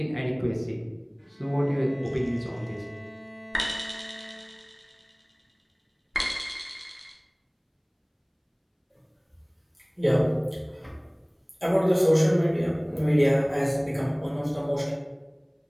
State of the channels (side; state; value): both; identical; correlation 1.00